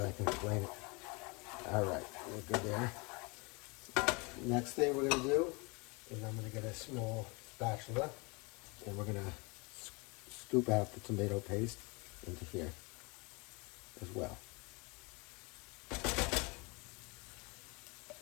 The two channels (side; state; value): right; quieter; 28.9 dB